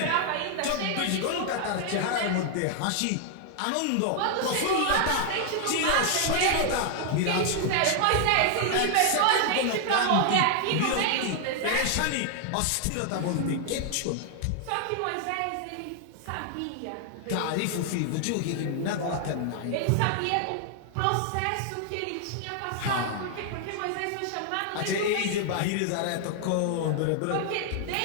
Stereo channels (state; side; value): different; both; correlation 0.00